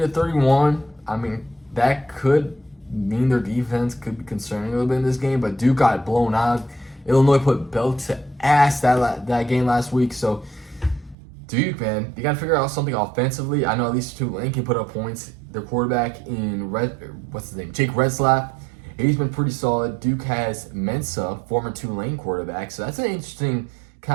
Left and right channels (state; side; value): drops out; left; at 11.2 s